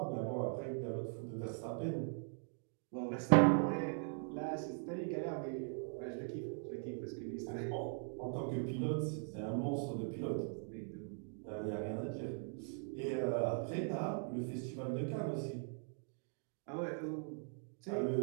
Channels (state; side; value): silent; left; 51 dB below the other